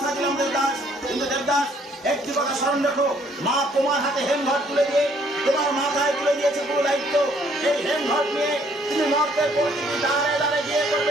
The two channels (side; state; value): both; normal; correlation 0.64